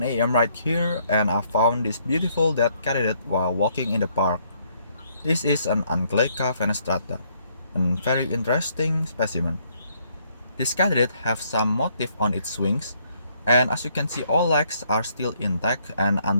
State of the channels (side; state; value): both; inverted; correlation -0.69